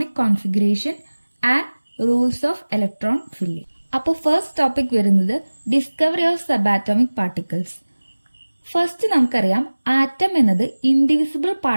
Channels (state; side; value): inverted; both; correlation -1.00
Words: configuration and rules of electron filling. അപ്പോൾ first topic വരുന്നത് discovery of subatomic particles. First നമുക്കറിയാം atom എന്നത് indivisible